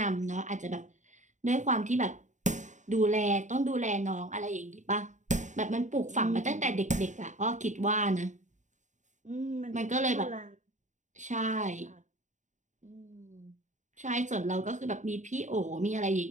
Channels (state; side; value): late; left; 0.35 ms